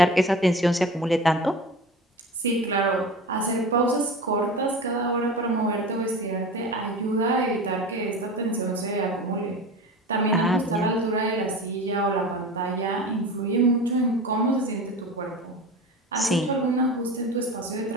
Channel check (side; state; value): both; normal; correlation 0.32